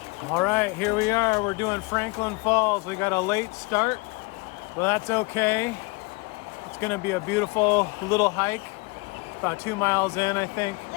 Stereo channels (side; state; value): right; quieter; 26.8 dB